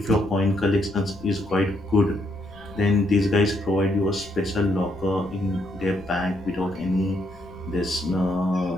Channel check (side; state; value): left; noise; rumble, 22 dB below the sound